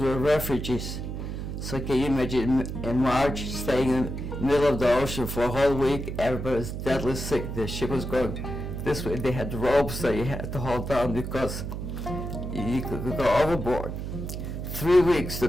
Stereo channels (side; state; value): right; noise; hum, 5 dB below the sound